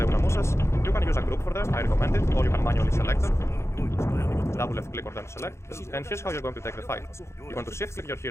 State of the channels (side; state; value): right; late; 0.13 ms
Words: unamusas. You can use a group for them, I recommend it, or you can manually select them. Double left click on them to select, and here's how you're going to take the fight. You're going to shift click your